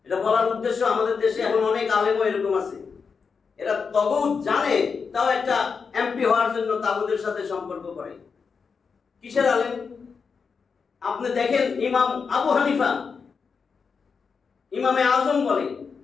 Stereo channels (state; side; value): quieter; right; 5.5 dB